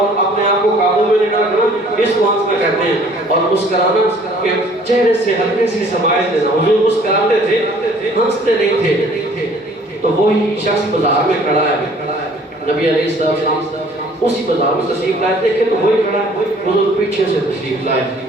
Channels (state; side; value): normal; both; correlation 0.55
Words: اپنے آپ کو قابو میں لینا کرنا, اس کو ہنسنا کہتے ہیں. اور مسکرانا کہ چہرے سے ہلکے سی سمائل دینا. حضور مسکراتے تھے, ہنستے نہیں تھے. تو وہی شخص بازار میں کھڑا ہے, نبی علیہ السلام اسی بازار میں تشریف لائے, دیکھیں تو وہی کھڑا ہے, حضور پیچھے سے تشریف لائے.